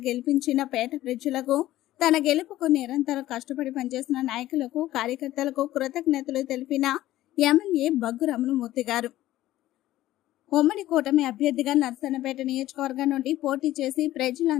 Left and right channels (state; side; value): quieter; right; 14.9 dB